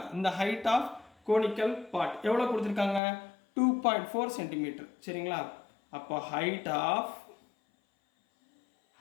இந்த ஹைட் ஆஃப் கோனிக்கல் பார்ட் எவ்வளோ கொடுத்துருக்காங்க, 2.4 சென்டிமீட்டர். சரிங்களா? அப்போ ஹைட் ஆஃப்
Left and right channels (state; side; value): drops out; right; at 3.0 s